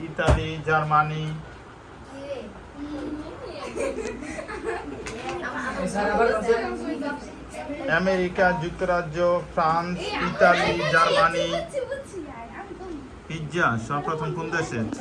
ইতালি, জার্মানি। আমেরিকা যুক্তরাজ্য, ফ্রান্স, ইতালি, জার্মানি। পিৎজা সর্বপ্রথম কোন দেশে?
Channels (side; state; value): both; identical; correlation 1.00